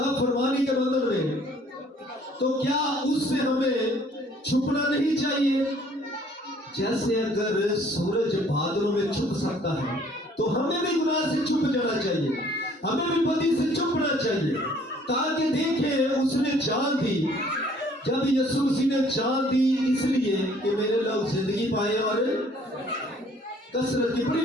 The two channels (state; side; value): normal; both; correlation 0.58